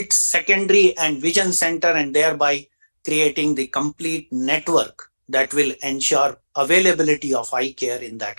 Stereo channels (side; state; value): both; inverted; correlation -1.00